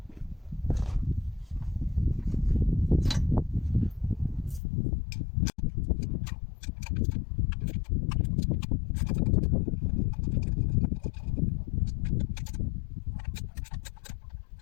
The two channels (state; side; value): drops out; right; at 4.6 s